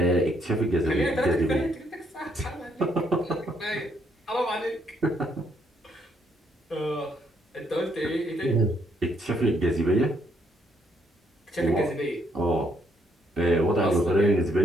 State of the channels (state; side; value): normal; both; correlation 0.72